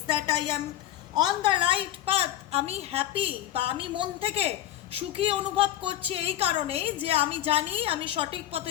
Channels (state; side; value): quieter; right; 13.0 dB